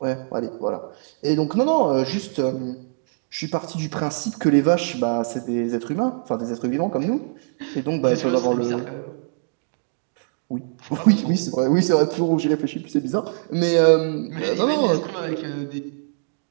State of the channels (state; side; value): silent; left; digital silence